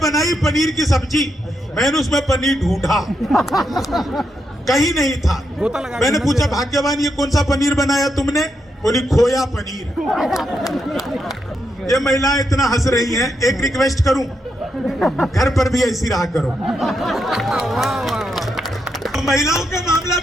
पनीर की सब्जी, मैंने उसमें पनीर ढूंढा, कहीं नहीं था। मैंने पूछा भाग्यवान ये कौन सा पनीर बनाया तुमने? बोली खोया पनीर। ये महिलाएं इतना हंस रही हैं, एक रिक्वेस्ट करूं, घर पर भी ऐसी रहा करो। महिलाओं का मामला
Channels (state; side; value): normal; both; correlation 0.82